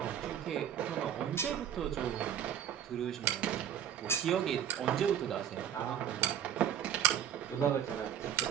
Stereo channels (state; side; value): quieter; left; 9.6 dB